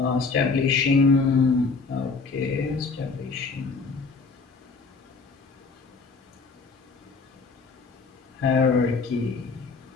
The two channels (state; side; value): quieter; right; 4.4 dB